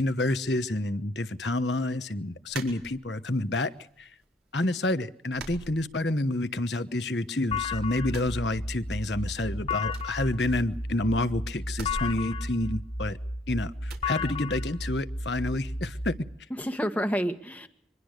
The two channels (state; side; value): normal; both; correlation 0.65